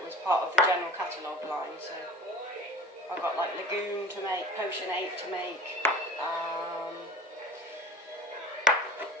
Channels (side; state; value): both; normal; correlation 0.38